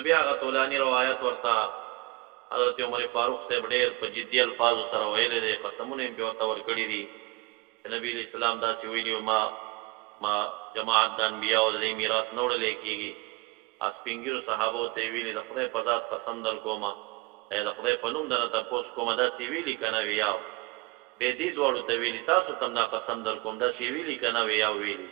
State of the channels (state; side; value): quieter; left; 23.2 dB